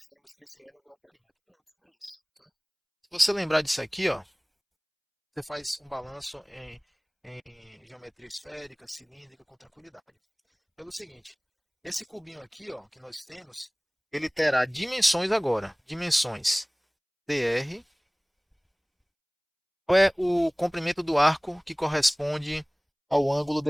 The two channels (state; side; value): identical; both; correlation 1.00